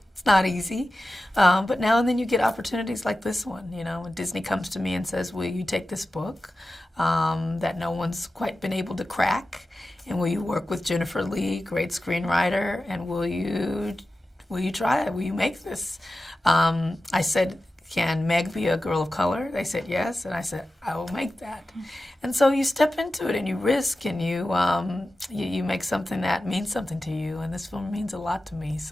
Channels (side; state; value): both; normal; correlation 0.94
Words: it's not easy, but now and then you get opportunities like this one. When Disney comes to me and says, "Will you take this book that no one's quite been able to crack, and will you work with Jennifer Lee, great screenwriter, and will you try it? Will you make this?" I said, "Can Meg be a girl of color?" They said yes, and I said, "I will make that." And so you step into it and you risk and you make something that means something to you, and this film means a lot to me.